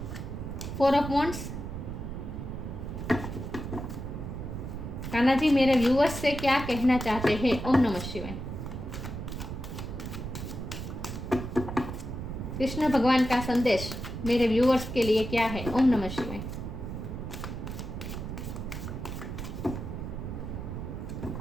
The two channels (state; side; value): noise; right; rumble, 6 dB below the sound